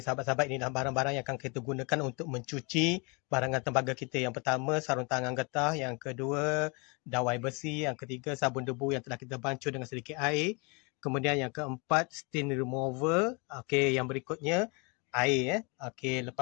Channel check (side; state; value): right; quieter; 31.2 dB